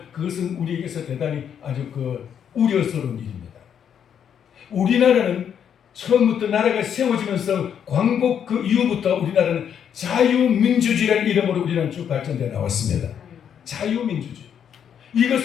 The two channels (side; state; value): right; quieter; 8.5 dB